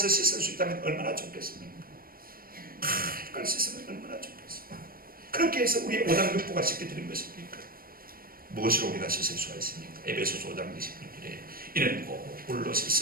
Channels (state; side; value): late; left; 0.42 ms